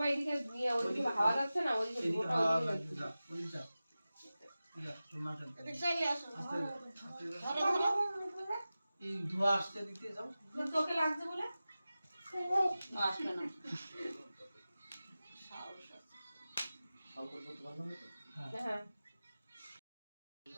এদিকে নিয়ে ওইদিকে হাওয়া যাচ্ছে না, ওইদিকে ওটা ওইদিকে যাচ্ছে। এই ধোয়া আসছে দিতে যাও, তোকে লাগছে বলে আসবে না। হ্যাঁ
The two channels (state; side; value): inverted; both; correlation -0.96